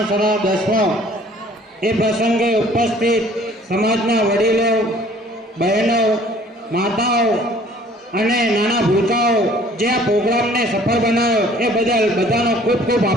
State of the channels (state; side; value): normal; both; correlation 0.54